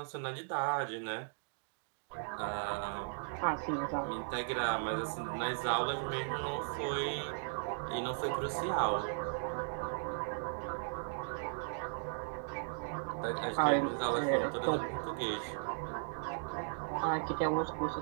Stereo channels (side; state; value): left; silent; digital silence